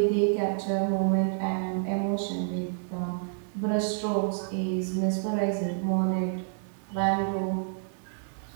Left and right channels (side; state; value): left; silent; digital silence